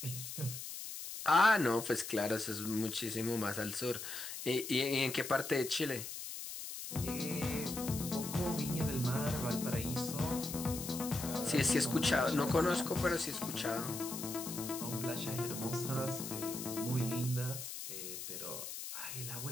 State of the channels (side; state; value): left; noise; hiss, 7 dB below the sound